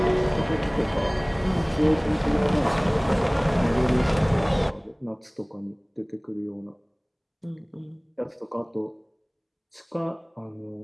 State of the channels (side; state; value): both; identical; correlation 1.00